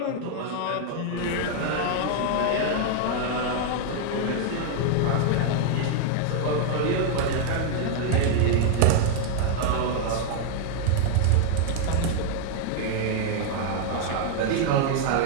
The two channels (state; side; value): different; both; correlation 0.00